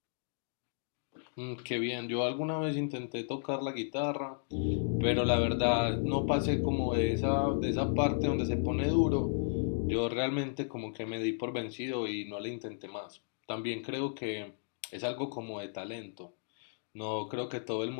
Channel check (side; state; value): right; silent; digital silence